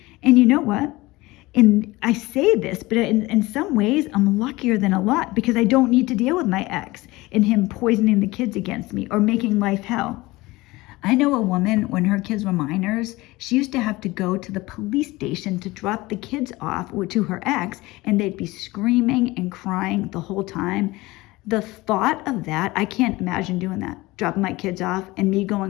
And you know what? And I say this, but in some ways, I'm luckier than a lot because I don't need to deal with my ex and him poisoning the kids against me or making life hell. I know a woman, when her kids were minors, she used to have to go to the police station to drop the kids off to her ex, and they'd be screaming and crying the whole time. The thought of that, I can't imagine doing that. Dropping my kids off and me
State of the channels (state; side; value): quieter; right; 20.5 dB